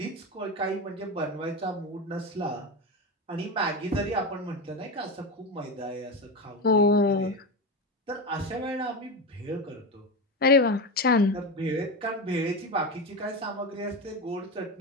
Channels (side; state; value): both; normal; correlation 0.19